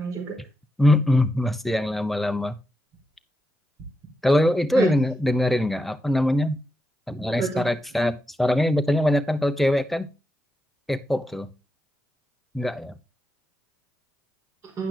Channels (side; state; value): both; normal; correlation 0.87